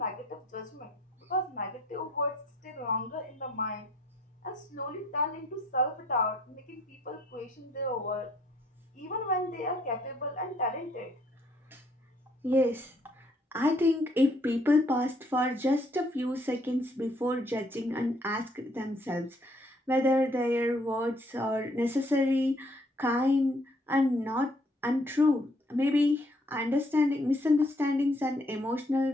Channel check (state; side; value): normal; both; correlation 0.65